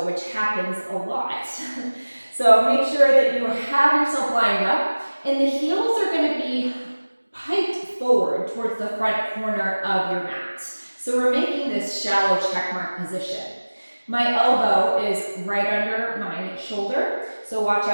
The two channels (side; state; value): both; inverted; correlation -1.00